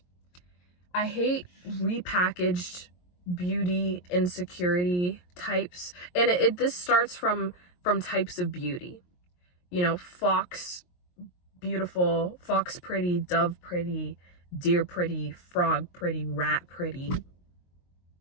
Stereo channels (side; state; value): right; late; 22 ms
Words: repackaged beauty insecurity types. And this starts from types of beauty. You know, fox beautiful, fox pretty, dove pretty, deer pretty, frog pretty, rat pretty.